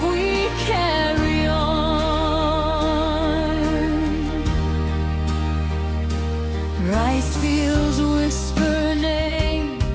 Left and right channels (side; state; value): both; identical; correlation 1.00